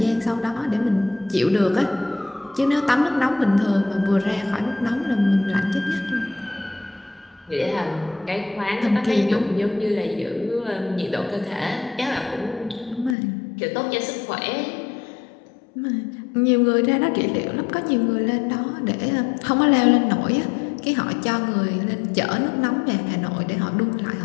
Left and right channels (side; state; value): right; drops out; at 13.2 s